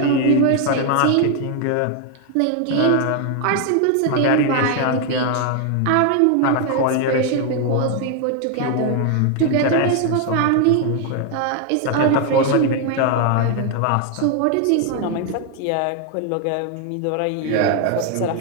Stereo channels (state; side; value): different; both; correlation 0.00